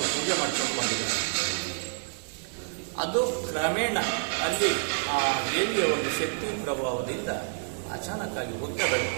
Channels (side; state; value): left; silent; 59 dB below the other